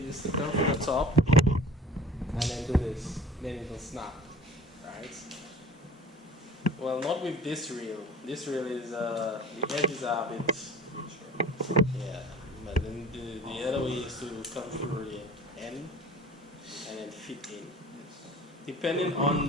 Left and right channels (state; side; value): normal; both; correlation 0.43